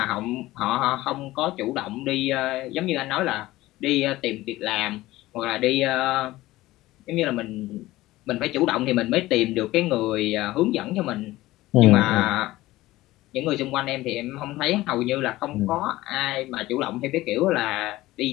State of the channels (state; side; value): quieter; right; 17.5 dB